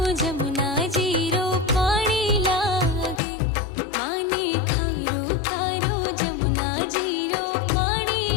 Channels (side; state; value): right; drops out; at 3.2 s